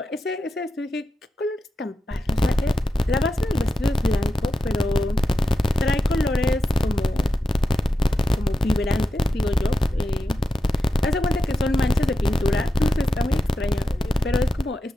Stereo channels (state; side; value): normal; both; correlation 0.89